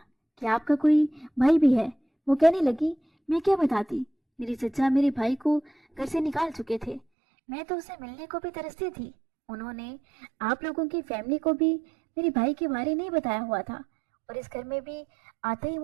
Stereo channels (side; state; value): left; drops out; at 7.0 s